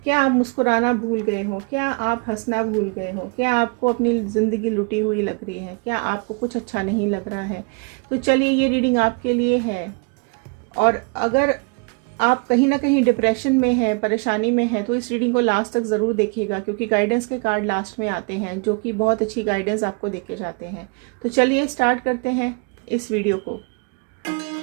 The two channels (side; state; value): left; quieter; 33.1 dB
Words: क्या आप मुस्कुराना भूल गए हो? क्या आप हंसना भूल गए हो? क्या आपको अपनी ज़िंदगी लुटी हुई लग रही है? क्या आपको कुछ अच्छा नहीं लग रहा है? तो चलिए, ये रीडिंग आपके लिए है। और अगर आप कहीं ना कहीं डिप्रेशन में है, परेशानी में है, तो इस रीडिंग को लास्ट तक ज़रूर देखिएगा, क्योंकि गाइडेंस के कार्ड लास्ट में आते हैं जो कि बहुत अच्छी गाइडेंस आपको देके जाते हैं। तो चलिए स्टार्ट करते हैं इस वीडियो को।